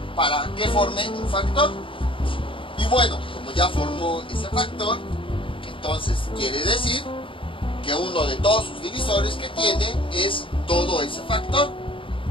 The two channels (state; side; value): late; right; 0.25 ms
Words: para que forme un factor. Y bueno, como ya formó ese factor, entonces quiere decir que uno de todos sus divisores que tiene es todo ese factor,